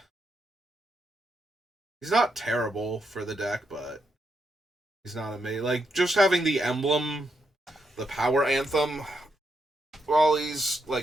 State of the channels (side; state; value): both; normal; correlation 0.81